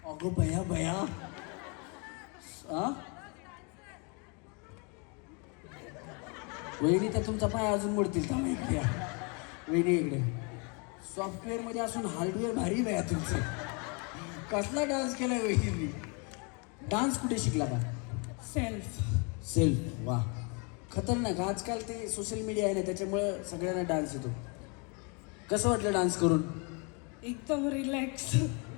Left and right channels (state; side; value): quieter; right; 33.6 dB